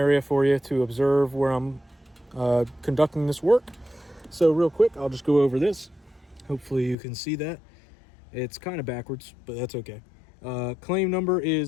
for you to observe where I'm conducting this work. So real quick, I'll just go over this. Hopefully you can see that. It's kind of backwards, but that's okay. Claim number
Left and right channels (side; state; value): right; drops out; at 7.0 s